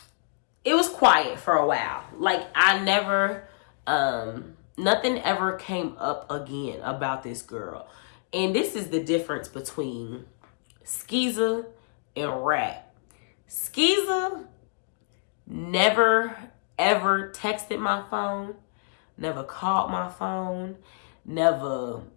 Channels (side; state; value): right; silent; digital silence